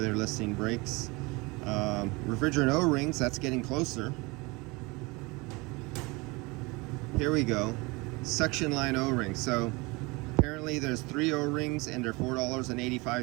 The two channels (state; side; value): quieter; left; 25.3 dB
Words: they're listing brakes. Refrigerant O-rings, that's getting closer. Here we go. suction line O-rings. So apparently there's 3 O-rings and they're